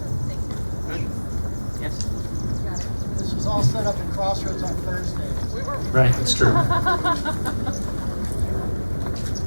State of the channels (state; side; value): inverted; both; correlation -1.00